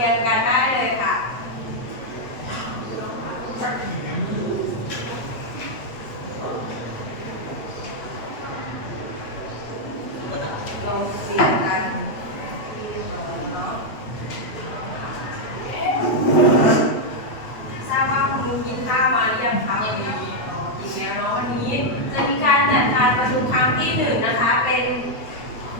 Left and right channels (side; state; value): right; late; 8.5 ms